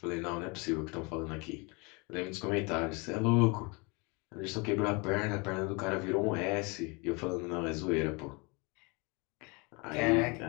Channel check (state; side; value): quieter; right; 29.1 dB